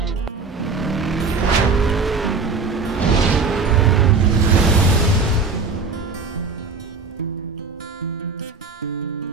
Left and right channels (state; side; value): quieter; left; 4.4 dB